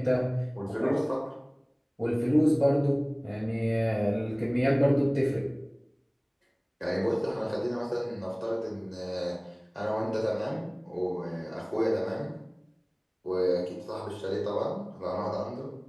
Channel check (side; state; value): both; identical; correlation 1.00